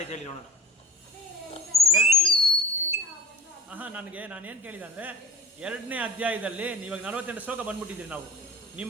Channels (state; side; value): normal; both; correlation 0.40